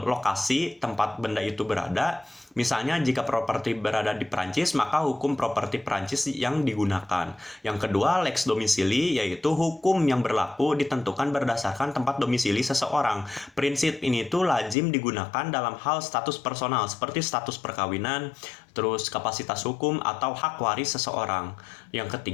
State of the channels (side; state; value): right; drops out; at 14.8 s